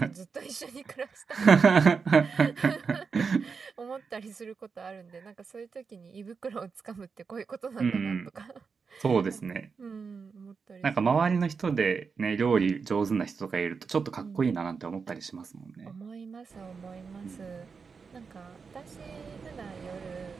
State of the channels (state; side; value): quieter; left; 5.3 dB